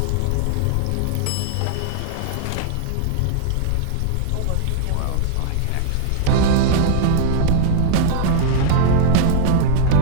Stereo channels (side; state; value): both; different; correlation -0.02